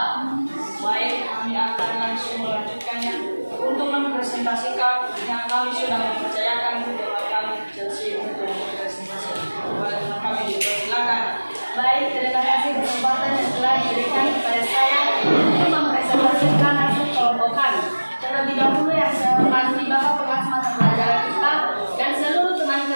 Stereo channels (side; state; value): both; inverted; correlation -1.00